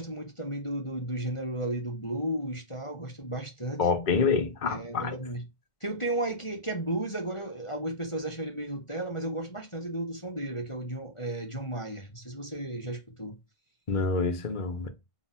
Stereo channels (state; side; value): late; right; 1.4 ms